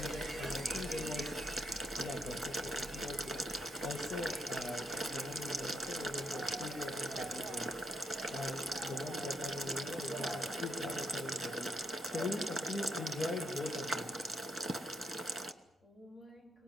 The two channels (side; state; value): both; normal; correlation 0.77